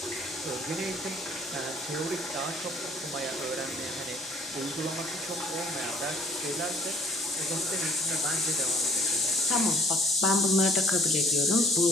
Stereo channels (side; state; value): both; normal; correlation 0.58